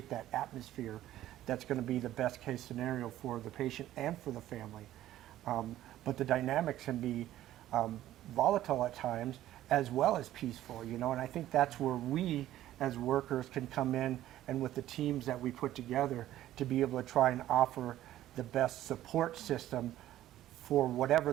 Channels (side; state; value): left; quieter; 13.6 dB